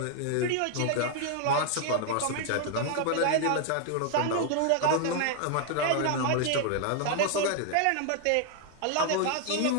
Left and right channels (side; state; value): both; different; correlation 0.00